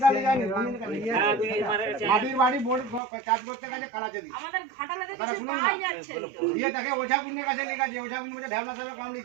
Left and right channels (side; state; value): left; drops out; at 3.0 s